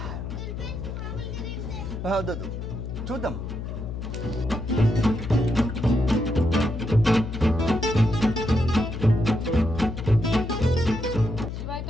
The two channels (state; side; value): noise; left; hum, 6 dB below the sound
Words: వద్దు చూద్దాం. శివ